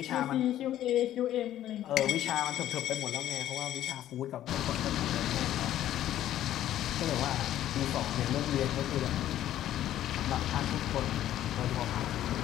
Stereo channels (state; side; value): quieter; right; 12.5 dB